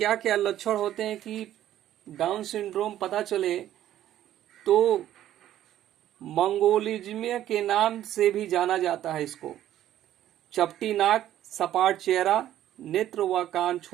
क्या लक्षण होते हैं कि डाउन सिंड्रोम पता चले तो मंगोलिज्म के नाम से भी जाना जाता है इसको। चपटी नाक, सपाट चेहरा, नेत्र व कान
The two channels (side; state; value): left; quieter; 12.3 dB